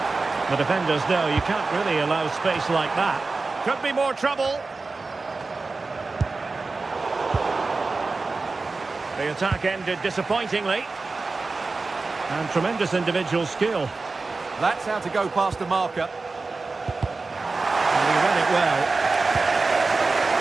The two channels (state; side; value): quieter; left; 3.8 dB